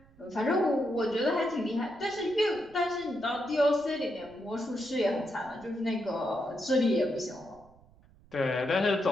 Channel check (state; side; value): noise; right; rumble, 27 dB below the sound